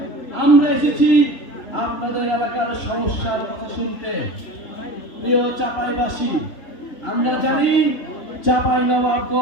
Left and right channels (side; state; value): right; late; 3.0 ms